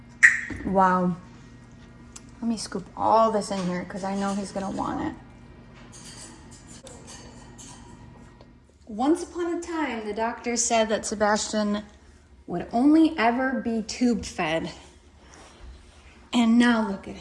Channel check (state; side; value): identical; both; correlation 1.00